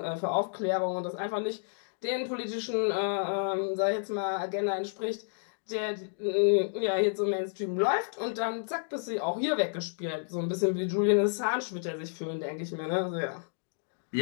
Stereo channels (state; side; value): silent; right; digital silence